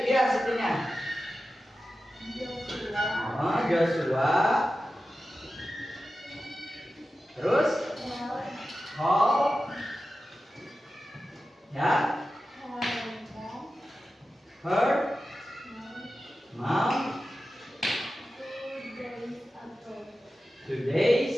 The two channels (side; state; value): both; normal; correlation 0.93